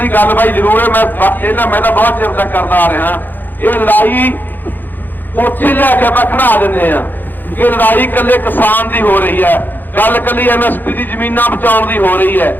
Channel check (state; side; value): late; right; 0.088 ms